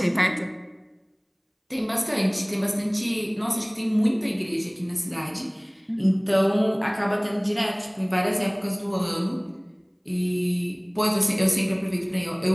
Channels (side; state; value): both; identical; correlation 1.00